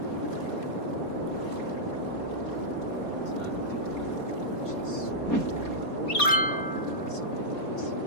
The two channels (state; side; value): late; right; 4.2 ms